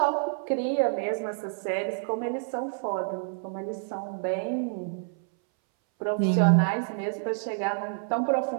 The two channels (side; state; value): left; silent; 59 dB below the other